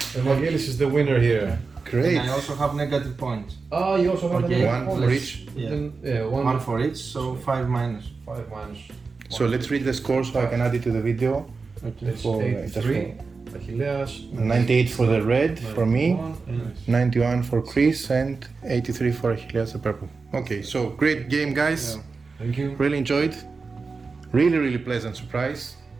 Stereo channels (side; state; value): left; quieter; 4.4 dB